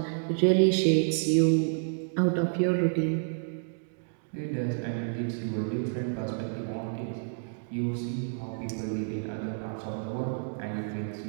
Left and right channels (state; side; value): silent; left; digital silence